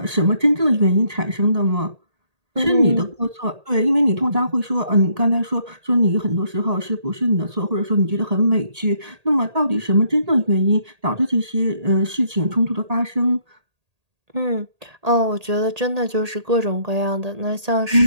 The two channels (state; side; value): late; left; 1.8 ms